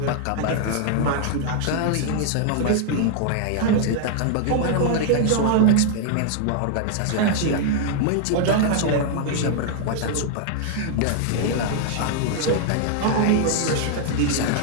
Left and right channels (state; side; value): different; both; correlation -0.01